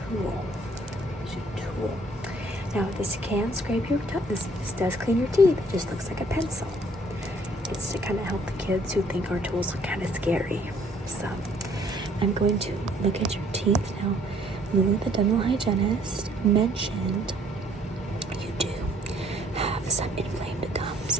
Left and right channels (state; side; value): normal; both; correlation 0.61